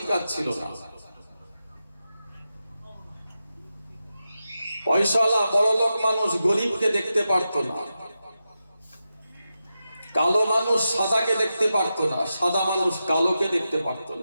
ছিল না। পয়সাওয়ালা বড়লোক মানুষ গরিবকে দেখতে পারতো না, কালো মানুষ সাদাকে দেখতে পারতো না, সাদা মানুষ কালোকে দেখতে পারতো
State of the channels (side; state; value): both; inverted; correlation -0.90